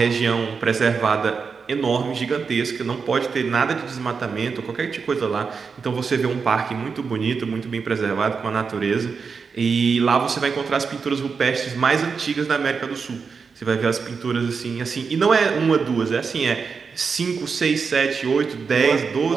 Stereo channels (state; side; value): quieter; left; 5.4 dB